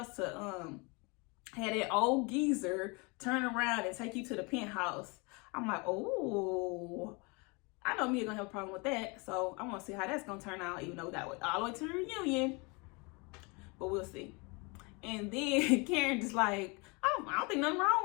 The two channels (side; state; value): right; quieter; 29.3 dB